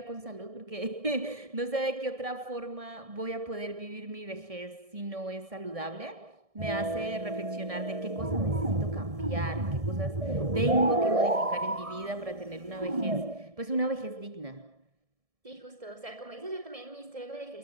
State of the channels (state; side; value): late; left; 1.7 ms